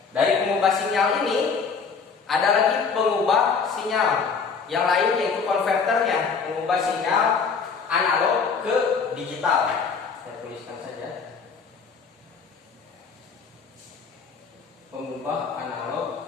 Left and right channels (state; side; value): quieter; right; 5.5 dB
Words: Dari pengubah sinyal ini ada lagi pengubah sinyal yang lain, yaitu konverternya, mengubah sinyal analog ke digital. Saya tuliskan saja. Pengubah